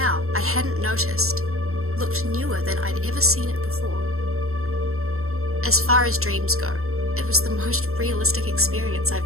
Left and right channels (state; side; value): late; left; 0.63 ms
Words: I hadn't noticed looked newer than I'd ever seen it before. As far as dreams go, it was the most realistic experience